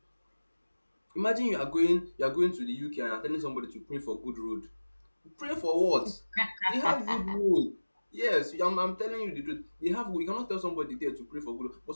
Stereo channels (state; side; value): inverted; both; correlation -1.00